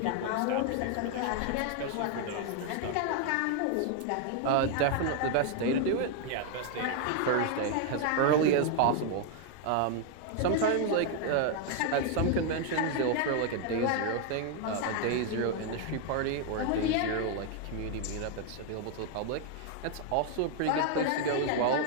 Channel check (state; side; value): different; both; correlation 0.00